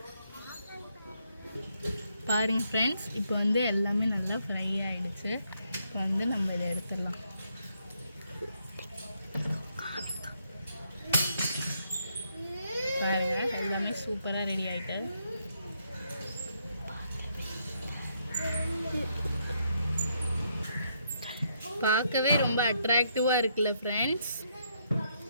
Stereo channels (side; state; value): both; inverted; correlation -0.75